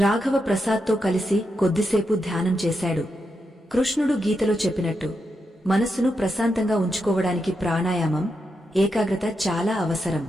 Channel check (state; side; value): normal; both; correlation 0.85